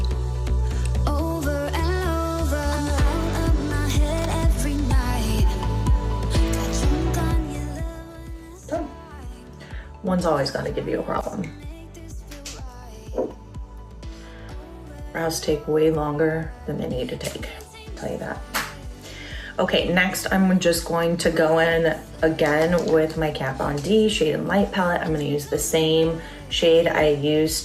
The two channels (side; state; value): both; identical; correlation 1.00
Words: Done. One's always gonna give you a problem. Brows take way longer than they need to take, I'll tell you that. Okay, next I'm just going to go in again with my Kat Von D Shade and Light palette. I'm gonna use the same shade I